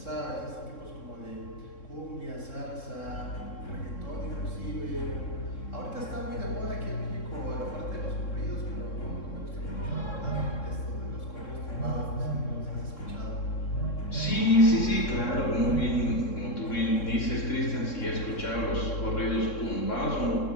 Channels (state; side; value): late; right; 3.7 ms